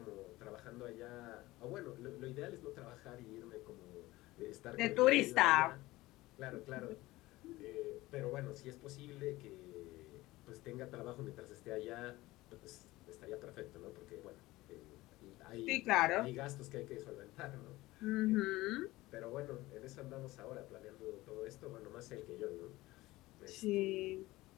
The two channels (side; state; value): right; quieter; 18.8 dB